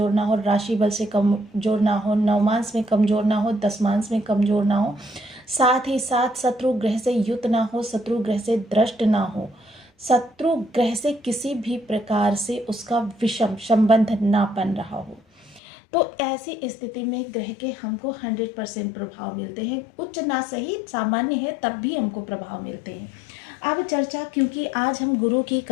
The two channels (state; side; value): drops out; right; at 15.6 s